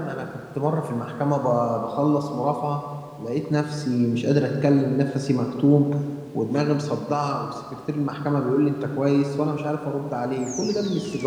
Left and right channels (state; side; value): identical; both; correlation 1.00